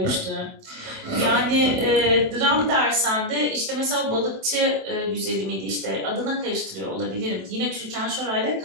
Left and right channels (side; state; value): left; late; 27 ms